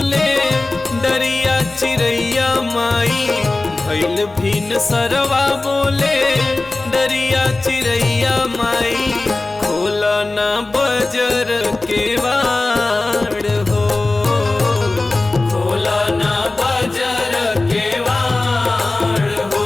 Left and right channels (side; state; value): right; quieter; 3.1 dB